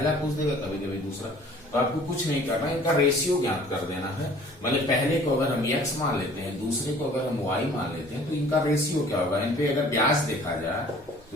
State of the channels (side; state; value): right; noise; rumble, 27 dB below the sound